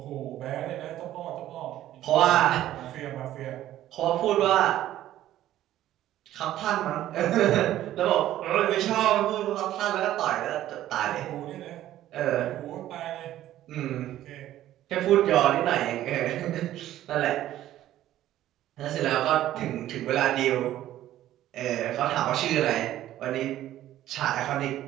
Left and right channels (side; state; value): left; quieter; 13.3 dB